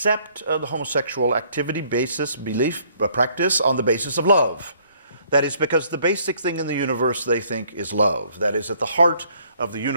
the homosexual activity, basis, belief, practice on the basis of love. That is because the basic thing in the universe they think is love. That is, at the heart of the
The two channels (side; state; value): both; inverted; correlation -0.63